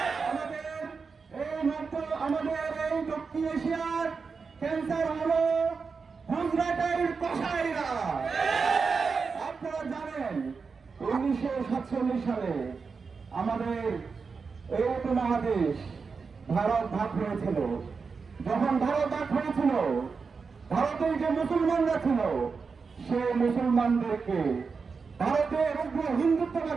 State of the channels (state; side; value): quieter; left; 5.0 dB